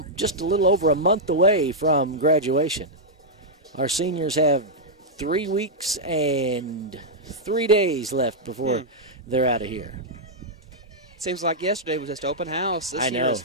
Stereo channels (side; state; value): both; normal; correlation -0.06